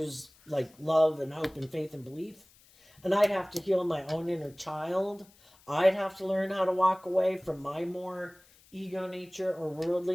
like love and hope and faith and belief. And I'd have to heal my own inner child. I'd have to learn how to walk away from my more ego nature or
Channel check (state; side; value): noise; left; hiss, 28 dB below the sound